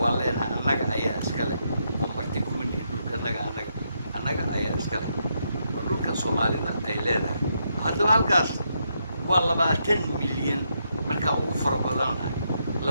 waa leenahay annaga ayaa iska leh oo marti kuma nihin dhulka annaga ayaa iska leh waa dhulka Soomaalida ay leedahay haddaba halkaas waa 20 milyan markaa ugu fara badanahay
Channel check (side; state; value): both; inverted; correlation -0.79